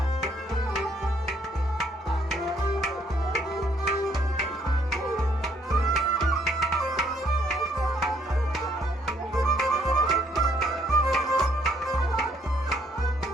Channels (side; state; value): both; normal; correlation 0.68